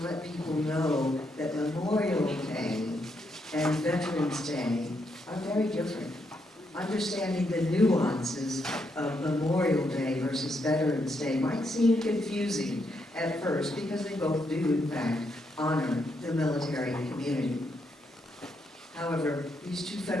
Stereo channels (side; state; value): both; normal; correlation 0.79